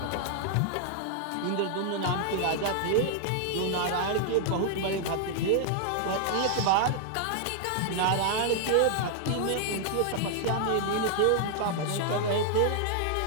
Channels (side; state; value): both; different; correlation 0.00